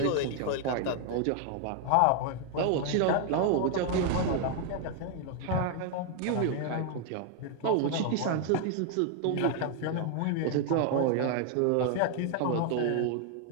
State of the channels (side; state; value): both; different; correlation 0.00